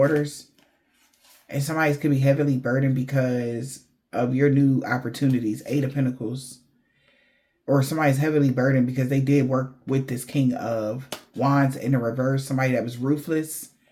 And somebody could be heavily burdened because of your new opportunities. 8 of Pentacles. Or somebody's heavily burdened because they did work with this King of Wands in the reverse. Somebody that was ruthless,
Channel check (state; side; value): identical; both; correlation 1.00